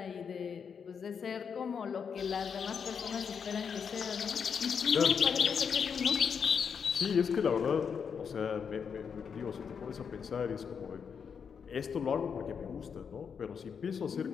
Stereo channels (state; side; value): quieter; right; 6.6 dB